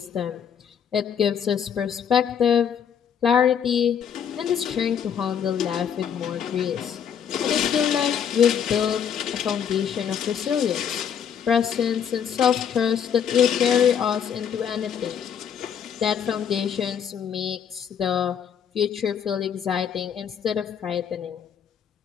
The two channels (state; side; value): quieter; right; 8.1 dB